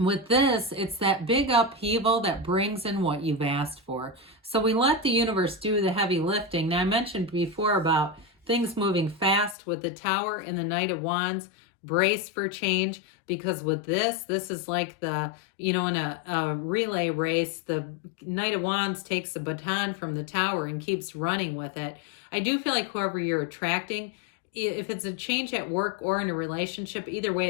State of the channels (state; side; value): drops out; right; at 9.6 s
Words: this, it's that big upheaval that brings in what you've asked for. So we let the universe do the heavy lifting. Now, I mentioned before about things moving fast with the Tower and the Knight of Wands. Brace for change, because with this is like the, in a relay race, the Knight of Wands takes the baton from the Tower and keeps running with it. I do feel like whoever you're attracting, if it's a change at work or in a relationship, either way,